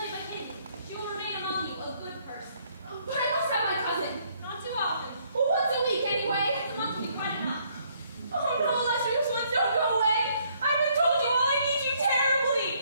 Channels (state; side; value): inverted; both; correlation -0.67